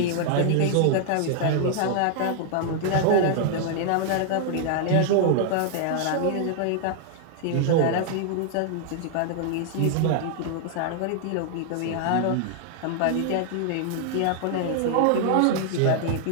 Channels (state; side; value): different; both; correlation -0.01